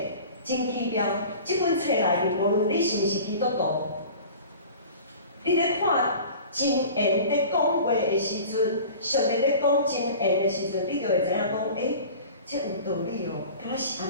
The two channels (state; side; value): inverted; both; correlation -0.40